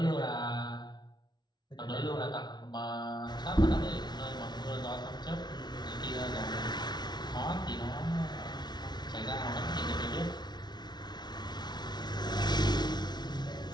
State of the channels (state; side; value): late; right; 0.20 ms